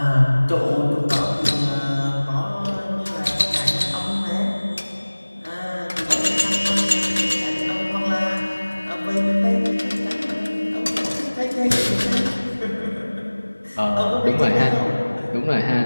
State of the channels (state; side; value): inverted; both; correlation -1.00